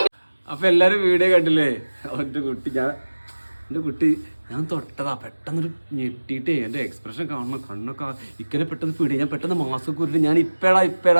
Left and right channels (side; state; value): both; inverted; correlation -1.00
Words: അപ്പൊ എല്ലാരും വീഡിയോ കണ്ടില്ലേ? എന്റെ കുട്ടി ഞാൻ തൊട്ടതാ, പെട്ടെന്നൊരു ഞെട്ടിയിട്ടേ എന്റെ എക്സ്പ്രഷൻ കാണണം, കണ്ണൊക്കെ ഇക്കനെ പെട്ടെന്ന് പിടി. ഞാൻ പെട്ടെന്ന് മാസ്ക് ഉരുട്ടി ഞാൻ